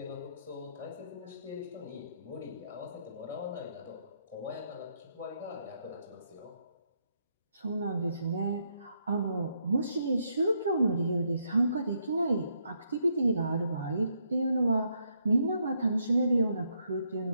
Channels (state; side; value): inverted; both; correlation -0.76